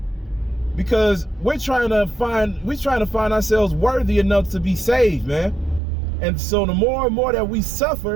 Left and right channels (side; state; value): left; drops out; at 5.8 s